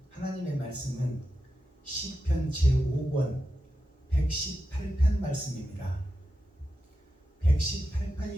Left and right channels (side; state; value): both; normal; correlation 0.90